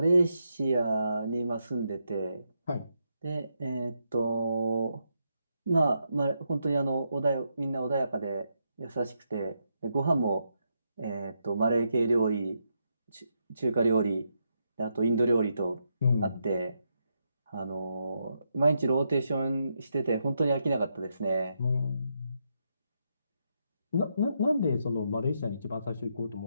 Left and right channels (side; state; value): both; inverted; correlation -0.81